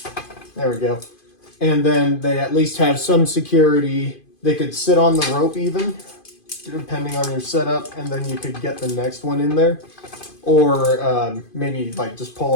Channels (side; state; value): right; late; 2.5 ms